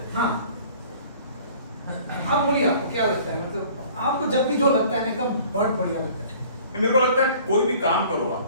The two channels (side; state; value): both; inverted; correlation -0.51